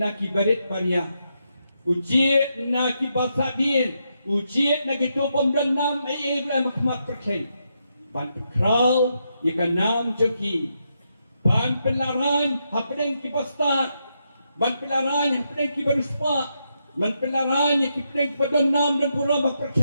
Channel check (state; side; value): inverted; both; correlation -0.81